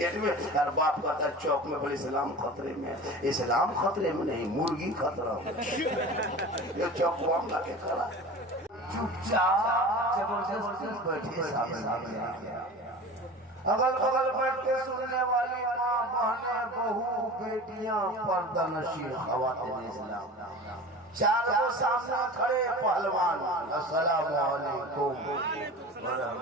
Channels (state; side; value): normal; both; correlation 0.35